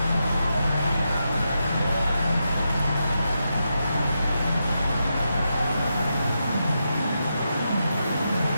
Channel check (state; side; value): inverted; both; correlation -0.86